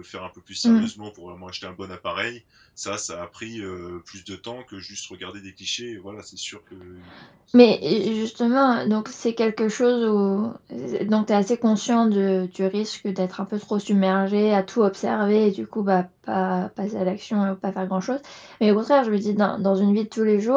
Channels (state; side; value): identical; both; correlation 1.00